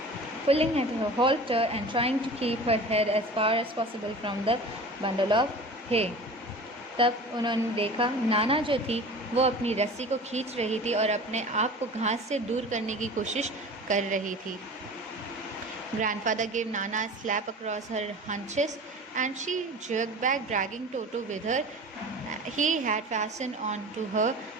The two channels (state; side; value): normal; both; correlation 0.38